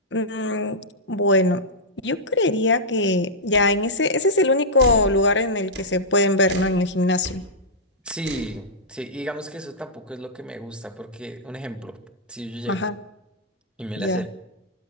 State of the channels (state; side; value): normal; both; correlation -0.10